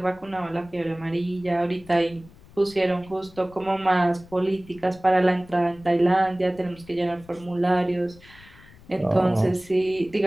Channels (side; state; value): left; noise; rumble, 23 dB below the sound